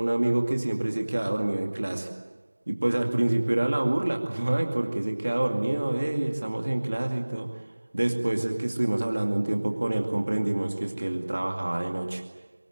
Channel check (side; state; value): both; inverted; correlation -1.00